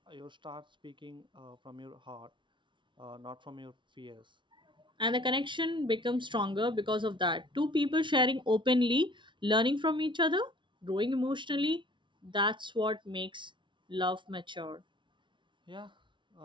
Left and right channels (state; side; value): late; left; 0.24 ms